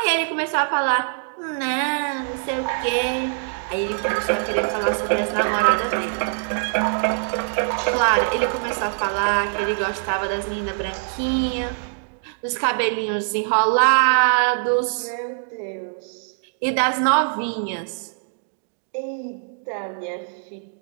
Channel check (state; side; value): silent; left; digital silence